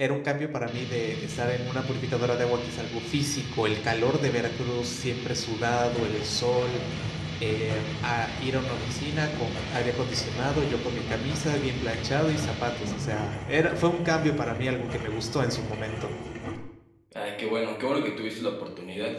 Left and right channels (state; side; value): identical; both; correlation 1.00